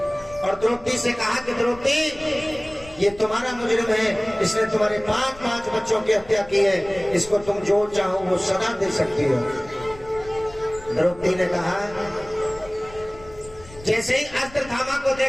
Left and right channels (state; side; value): noise; left; rumble, 20 dB below the sound